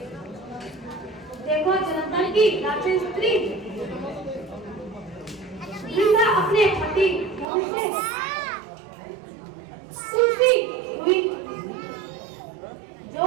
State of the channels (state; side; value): drops out; left; at 7.5 s